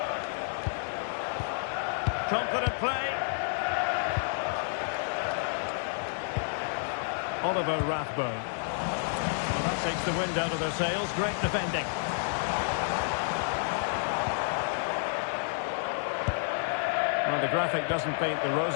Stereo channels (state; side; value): silent; right; digital silence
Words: Confident play. Oliver Rathbone. Well, that takes the wind out of their sails. Great defending. Well, the graphic doesn't paint the